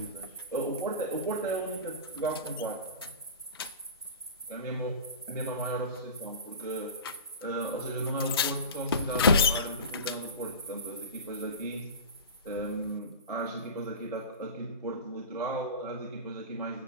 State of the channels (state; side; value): inverted; both; correlation -0.31